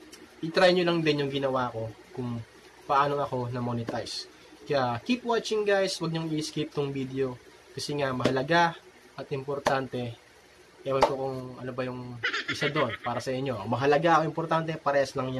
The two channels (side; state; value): both; identical; correlation 1.00